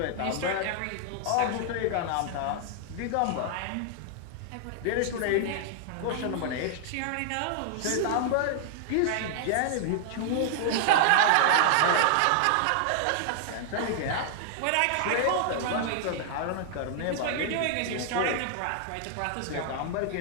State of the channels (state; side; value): different; both; correlation -0.01